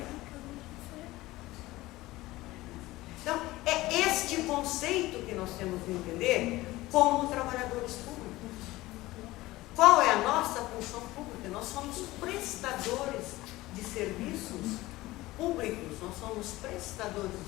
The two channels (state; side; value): quieter; right; 18.4 dB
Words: Então, é este conceito que nós temos que entender como trabalhadores públicos. Qual é a nossa função pública? Nós somos prestadores de serviços públicos, nós somos prestadores